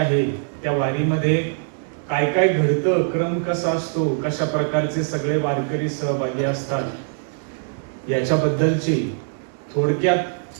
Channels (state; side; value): silent; left; 64 dB below the other